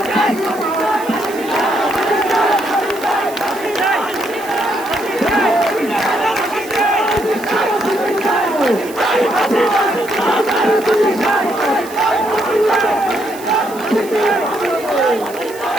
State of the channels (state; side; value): noise; right; hiss, 18 dB below the sound